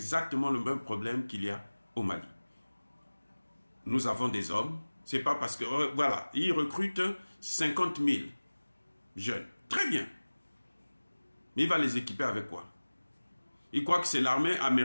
le même problème qu'il y a au Mali. Nous avons des hommes, c'est pas parce que, voilà, ils recrutent 50 000 jeunes. Très bien. Mais il va les équiper avec quoi? Il croit que c'est l'armée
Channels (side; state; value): both; inverted; correlation -1.00